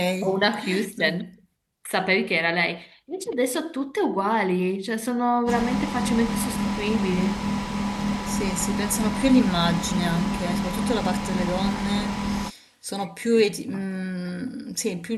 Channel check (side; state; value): both; identical; correlation 1.00